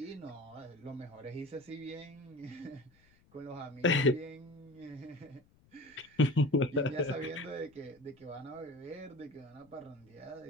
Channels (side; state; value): left; noise; rumble, 30 dB below the sound